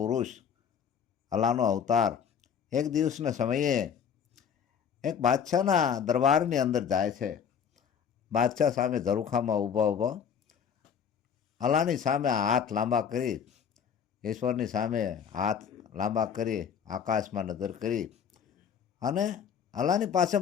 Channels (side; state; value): right; quieter; 7.5 dB